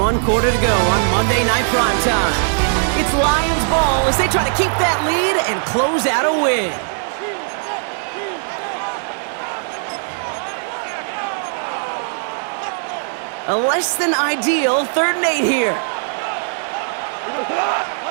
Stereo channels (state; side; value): silent; left; digital silence